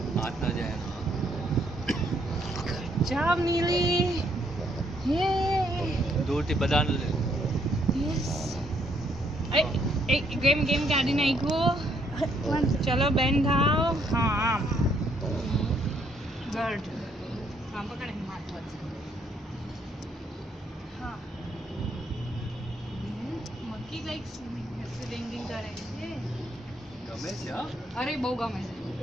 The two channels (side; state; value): both; normal; correlation 0.71